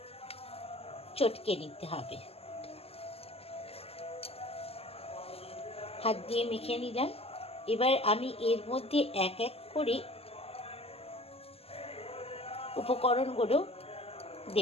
চটকে নিতে হবে। হাত দিয়ে মেখে নিলাম। এবার আমি এর মধ্যে এক এক করে উপকরণগুলো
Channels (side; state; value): right; late; 0.29 ms